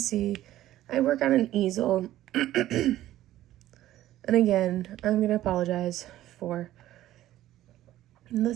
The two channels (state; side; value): quieter; left; 14.0 dB